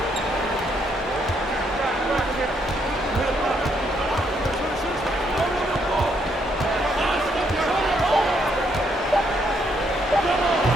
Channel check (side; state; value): both; normal; correlation 0.73